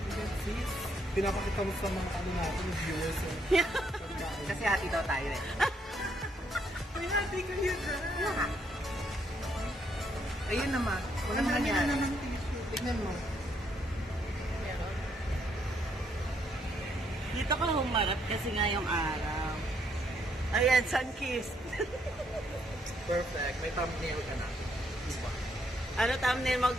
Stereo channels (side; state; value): both; normal; correlation 0.72